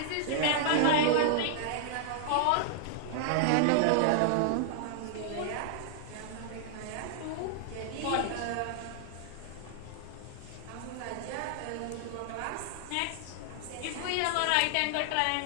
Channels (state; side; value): different; both; correlation -0.01